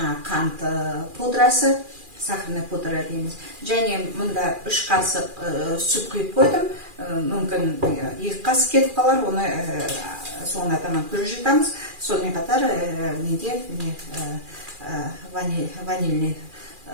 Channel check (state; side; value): late; left; 2.4 ms